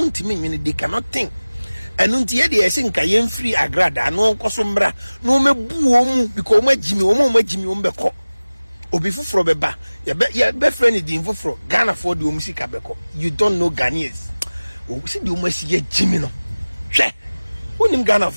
ntime nwene they cannot think enu nti ye de ese nka ye free Agradaa no nkoso mbra no mebu omu because omu agimi omu beko obi fufuro beba ye be friend di fufuro Ghana for the omu sika beko you don't know Ghanaians o si di omu asi ye gimi no hwe onim Ghana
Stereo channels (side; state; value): both; inverted; correlation -1.00